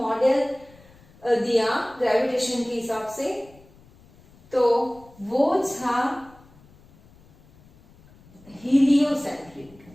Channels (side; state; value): left; noise; rumble, 26 dB below the sound